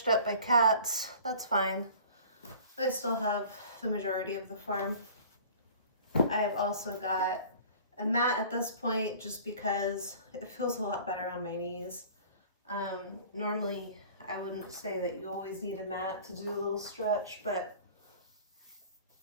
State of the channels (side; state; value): both; inverted; correlation -0.46